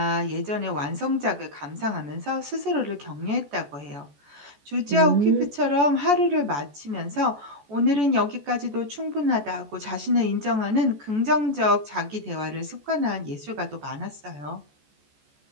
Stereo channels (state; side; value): late; left; 14 ms